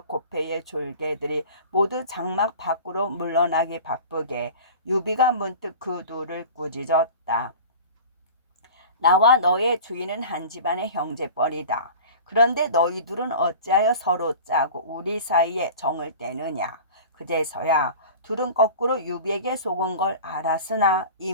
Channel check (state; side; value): inverted; both; correlation -0.38